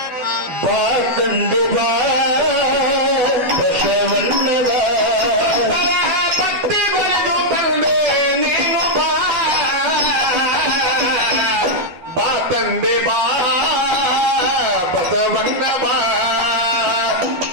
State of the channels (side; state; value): left; late; 12 ms